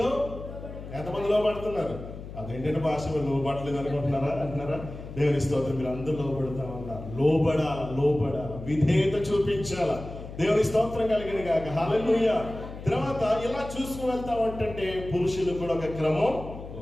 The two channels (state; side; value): noise; left; hum, 12 dB below the sound